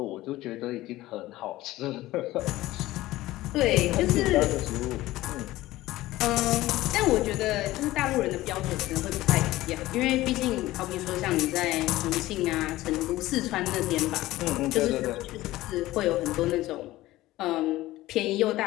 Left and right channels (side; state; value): right; quieter; 16.9 dB